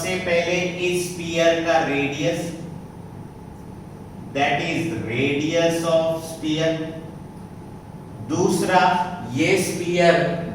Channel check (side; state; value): both; identical; correlation 1.00